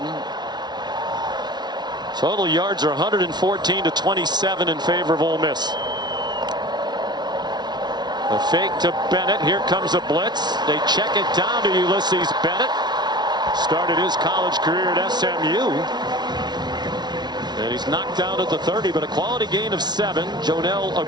Total yards are 114 to 27 in favor of Ole Miss. The fake to Bennett. Here comes a blitz. They check it down to Ulysses Bennett. Started his college career at SMU. And he's knocked down at the 30, but a quality gain of 7. Jonel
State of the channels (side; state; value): left; late; 0.20 ms